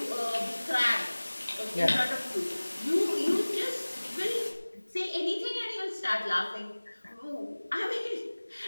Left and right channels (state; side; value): inverted; both; correlation -1.00